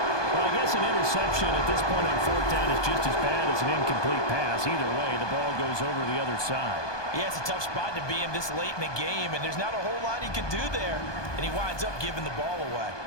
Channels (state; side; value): late; right; 1.2 ms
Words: Well, I guess an interception at this point on 4th down is just as bad as an incomplete pass. Either way, the ball goes over the other side. Yeah, it's a tough spot to be in this late in the game, and there's not a whole lot he can do there. And he winds up giving the ball away.